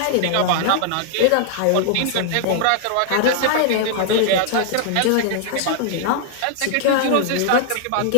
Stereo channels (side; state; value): both; different; correlation -0.01